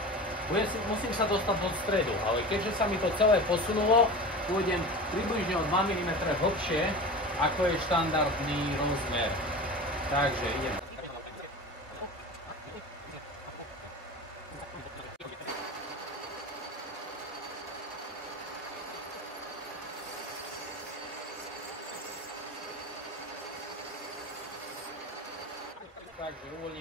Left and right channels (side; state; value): both; normal; correlation 0.32